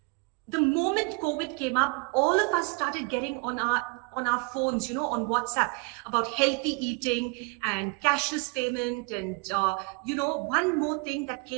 The moment COVID came up, all of us started getting on our phones, on WhatsApp, about healthy eating and cashless payment. And one more thing that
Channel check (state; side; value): quieter; left; 31.1 dB